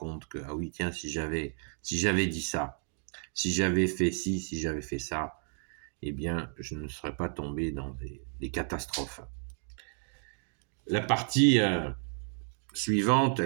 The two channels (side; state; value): left; silent; 56 dB below the other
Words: que, ah oui, tiens, si j'avais dit ça, si j'avais fait ci, si j'avais fait ça, eh bien, je ne serais pas tombé dans des catastrophes. La partie suivante,